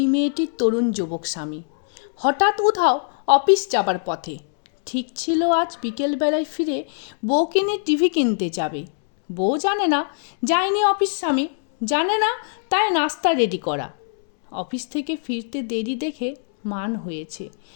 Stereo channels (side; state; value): right; silent; 64 dB below the other